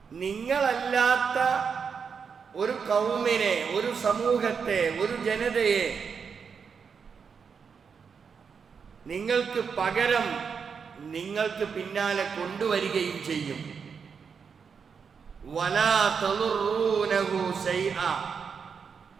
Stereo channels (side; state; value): left; quieter; 6.1 dB